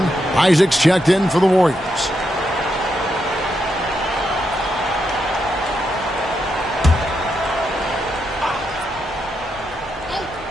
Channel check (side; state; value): both; normal; correlation 0.82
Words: Isaac's checked in for the Warriors.